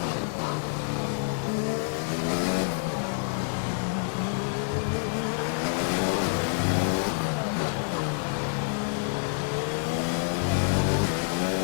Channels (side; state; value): right; silent; digital silence